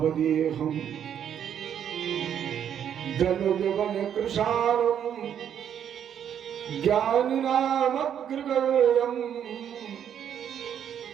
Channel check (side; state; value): left; quieter; 9.1 dB